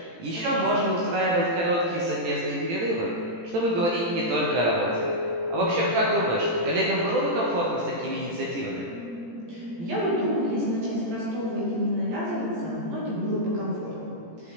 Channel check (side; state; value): left; late; 18 ms